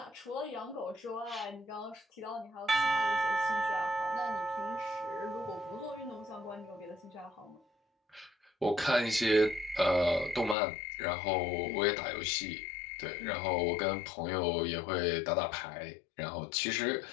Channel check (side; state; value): right; drops out; at 10.6 s